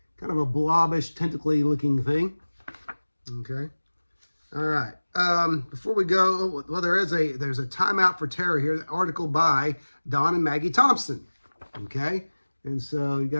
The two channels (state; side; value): inverted; both; correlation -1.00